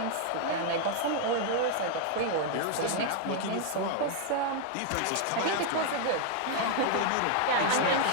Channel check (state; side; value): different; both; correlation 0.00